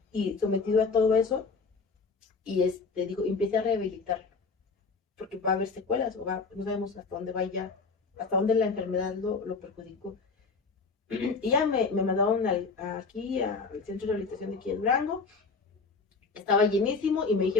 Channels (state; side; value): quieter; right; 4.5 dB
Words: y sometido a todo eso. Y digo, empiece a rehabilitarlo, porque va a haber secuelas, no sabemos hasta dónde vaya, hasta dónde la enfermedad lo perjudicó. Y ya me mandaron aquí al centro de rehabilitación de aquí en Durango. Estaba llenísimo y me